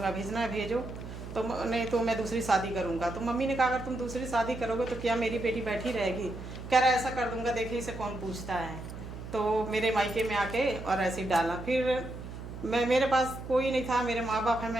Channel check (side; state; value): right; noise; hum, 10 dB below the sound